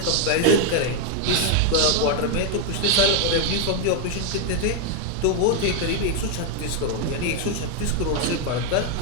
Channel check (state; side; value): different; both; correlation 0.00